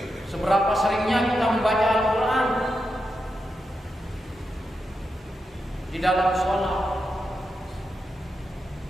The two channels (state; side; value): normal; both; correlation 0.87